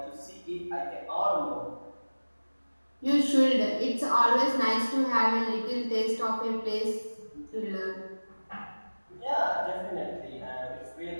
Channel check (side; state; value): both; inverted; correlation -1.00